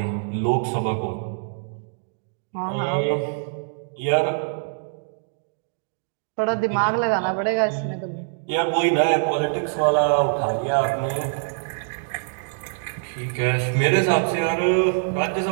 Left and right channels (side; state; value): left; silent; digital silence